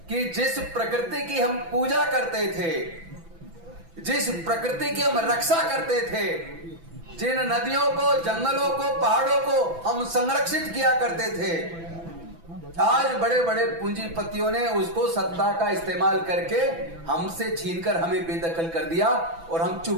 कि जिस प्रकृति की हम पूजा करते थे, जिस प्रकृति की हम रक्षा करते थे, जिन नदियों को, जंगलों को, पहाड़ों को हम संरक्षित किया करते थे, आज बड़े बड़े पूंजीपतियों ने उसको सत्ता का इस्तेमाल करके हमसे छीनकर हमें बेदखल कर दिया और हम चुप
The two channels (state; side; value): late; left; 6.0 ms